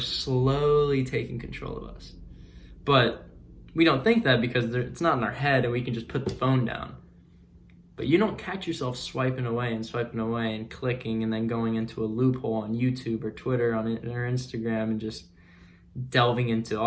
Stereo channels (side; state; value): both; identical; correlation 1.00